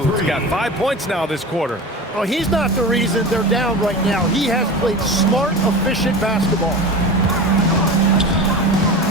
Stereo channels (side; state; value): both; normal; correlation 0.31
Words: got 5 points now this quarter. Oh, he's not the reason they're down right now. He has played smart, efficient basketball.